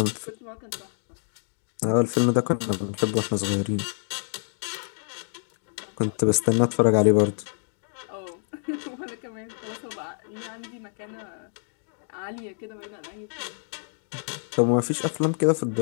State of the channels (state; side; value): silent; right; digital silence